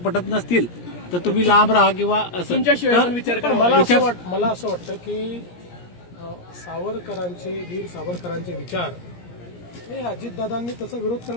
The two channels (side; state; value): right; late; 17 ms